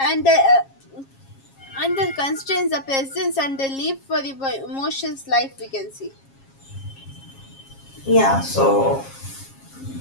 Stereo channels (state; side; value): late; right; 7.4 ms